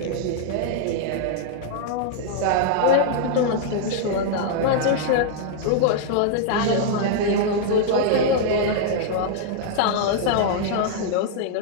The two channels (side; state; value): both; different; correlation -0.01